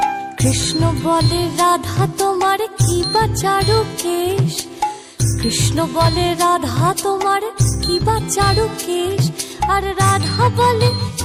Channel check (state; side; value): identical; both; correlation 1.00